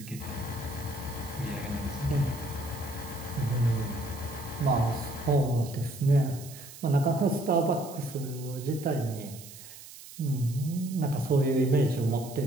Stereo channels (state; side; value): noise; right; hiss, 16 dB below the sound